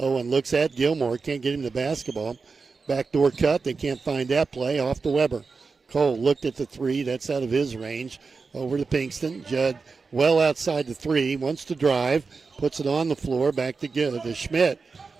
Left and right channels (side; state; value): left; quieter; 4.6 dB